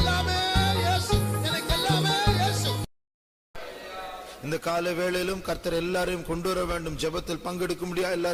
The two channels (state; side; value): identical; both; correlation 1.00